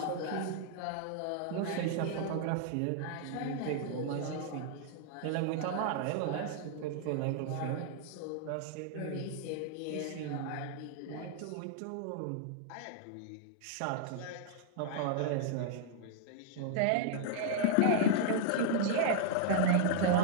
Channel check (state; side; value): different; both; correlation -0.01